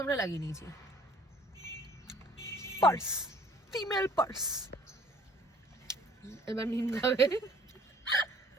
আমরা লাগিয়ে নিয়েছি। Purse, female purse. এবার নিন খাবে।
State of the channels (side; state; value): both; normal; correlation 0.56